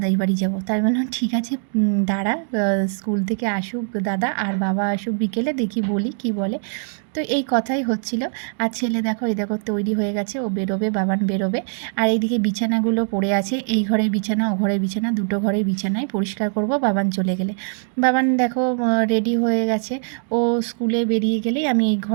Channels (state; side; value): silent; left; 64 dB below the other